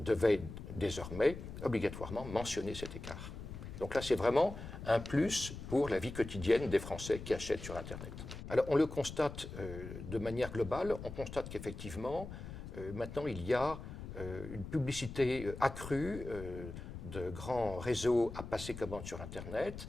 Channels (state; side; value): noise; left; rumble, 10 dB below the sound